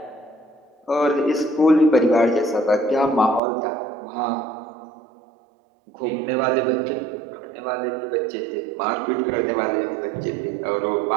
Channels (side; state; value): left; drops out; at 3.4 s